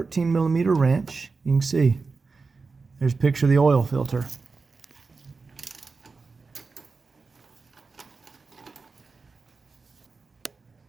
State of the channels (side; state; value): left; quieter; 4.3 dB